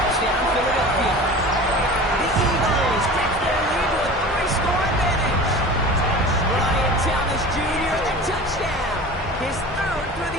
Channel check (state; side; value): normal; both; correlation 0.37